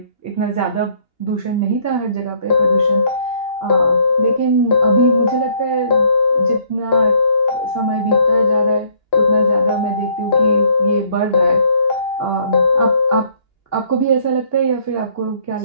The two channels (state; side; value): late; right; 2.8 ms